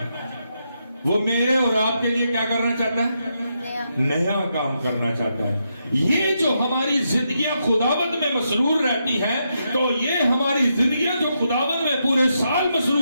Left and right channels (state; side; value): inverted; both; correlation -0.82